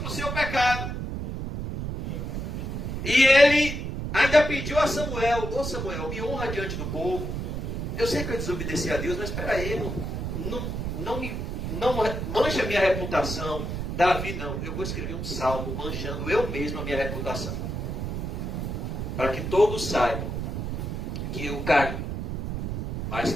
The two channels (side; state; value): right; noise; rumble, 4 dB below the sound